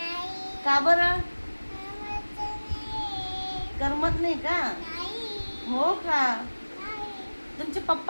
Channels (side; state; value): both; inverted; correlation -1.00